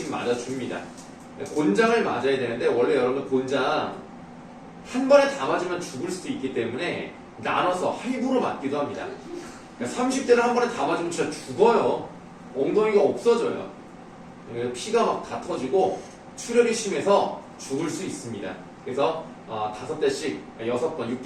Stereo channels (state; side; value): identical; both; correlation 1.00